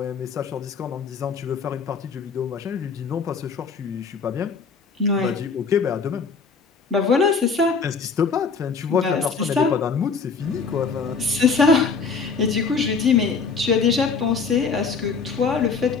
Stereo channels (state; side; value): quieter; right; 5.1 dB